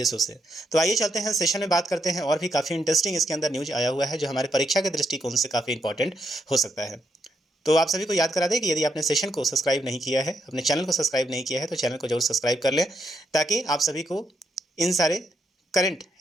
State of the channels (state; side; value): normal; both; correlation 0.79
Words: से। तो आइए चलते हैं सेशन में बात करते हैं और भी काफ़ी इंटरेस्टिंग इसके अंदर न्यूज आया हुआ है जो हमारे परीक्षा के दृष्टिकोण से काफ़ी इंपॉर्टेंट हो सकता है। तो आप सभी को याद करा दें कि यदि आपने सेशन को सब्सक्राइब नहीं किया है, अपने चैनल को सब्सक्राइब नहीं किया है, तो चैनल को जरूर सब्सक्राइब कर लें ताकि आप सभी को इन सारे करंट